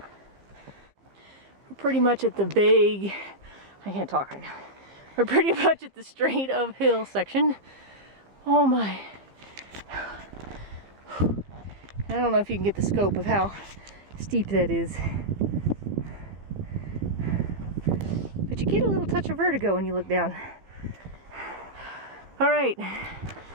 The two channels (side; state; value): left; late; 15 ms